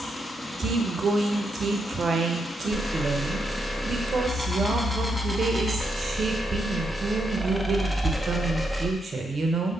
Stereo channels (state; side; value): normal; both; correlation 0.81